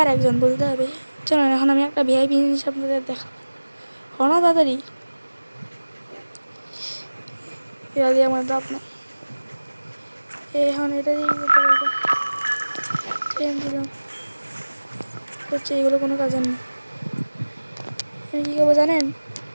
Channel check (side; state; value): both; inverted; correlation -1.00